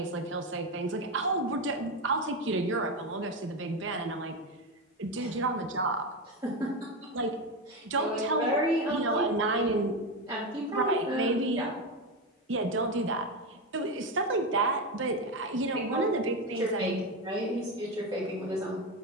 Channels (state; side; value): normal; both; correlation 0.14